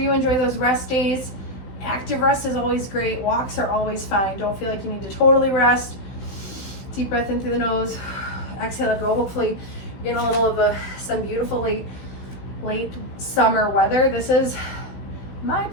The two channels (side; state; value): right; late; 16 ms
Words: enjoy those rest days. Active rest is always great. Walks are always fine. Don't feel like you need to totally rest. Deep breath in through the nose. Exhale, go. Hopefully you're getting a little of some beautiful late summer weather. This is my